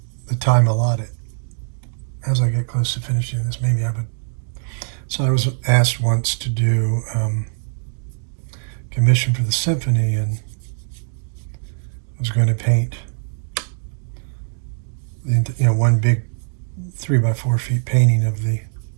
time allotted. As I get close to finishing this, maybe I would. So I was asked once to do commission for the symphony, and I was going to paint one big 3x4 feet painting of the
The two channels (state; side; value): silent; left; 65 dB below the other